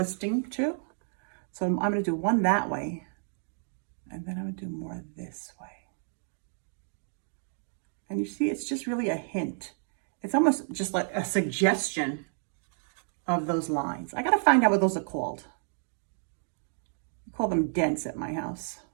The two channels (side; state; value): left; silent; 57 dB below the other